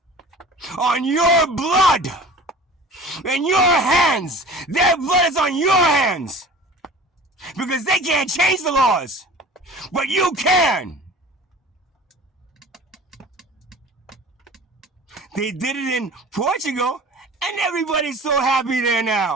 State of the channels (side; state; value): both; normal; correlation 0.41